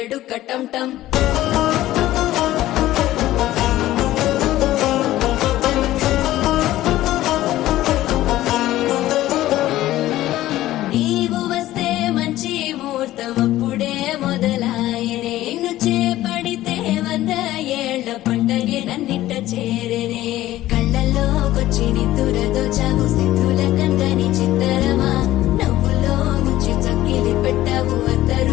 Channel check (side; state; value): right; quieter; 15.0 dB